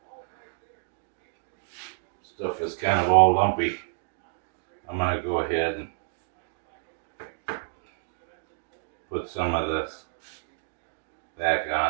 stuff is kind of all lumpy, I'm going to go ahead and put some of this back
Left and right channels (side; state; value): left; silent; digital silence